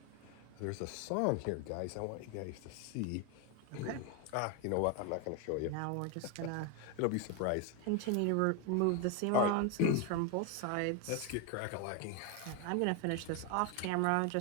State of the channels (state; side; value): different; both; correlation 0.01